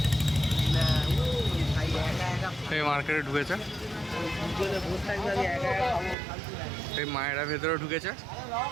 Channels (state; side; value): drops out; left; at 6.2 s